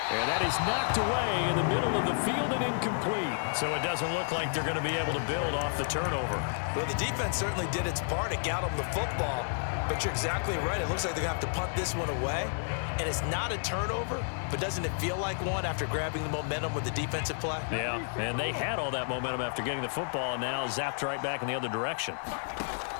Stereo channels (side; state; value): right; silent; digital silence